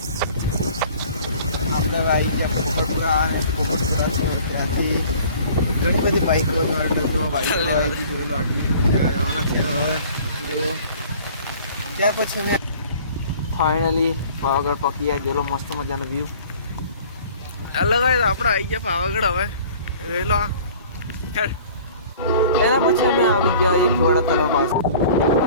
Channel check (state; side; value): inverted; both; correlation -0.49